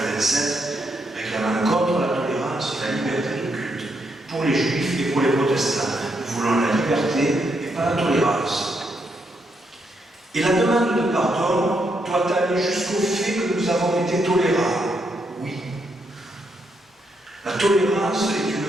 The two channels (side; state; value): both; normal; correlation 0.79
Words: réclamant contre la tolérance la liberté de culte pour les juifs et pour les protestants. Nous voulons la liberté et pas la tolérance. Et la demande de pardon doit aller jusqu'au fait que nous avons été tolérables. Oui. La tolérance est